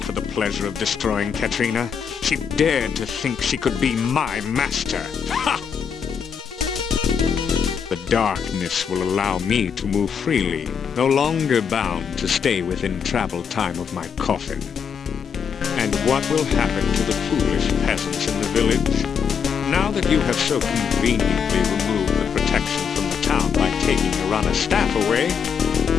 the pleasure of destroying Katrina. She dared to think she could be my master. Ha! The darkness will allow me to move freely, no longer bound to stay within travel time of my coffin. And what will happen to the foolish peasants in the village? Now that you have so conveniently removed the protection from the town by taking Irana's staff away,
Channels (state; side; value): quieter; right; 6.9 dB